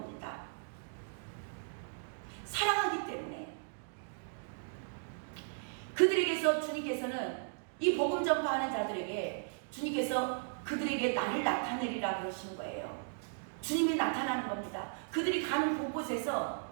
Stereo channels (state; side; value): silent; left; digital silence